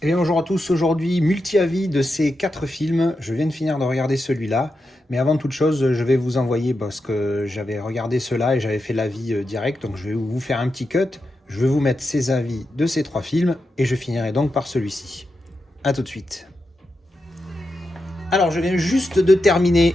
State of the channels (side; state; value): both; normal; correlation 0.88